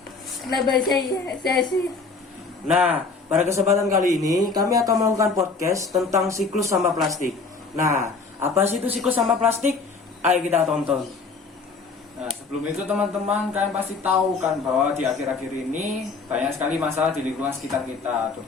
Kenapa saya sih? Nah, pada kesempatan kali ini kami akan melakukan podcast tentang siklus sampah plastik. Nah, apa sih itu siklus sampah plastik? Ayo kita tonton. Nah, sebelum itu teman-teman, kalian pasti tahu kan bahwa di akhir-akhir ini banyak sekali masalah di lingkungan sekitar kita,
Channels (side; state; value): right; quieter; 4.3 dB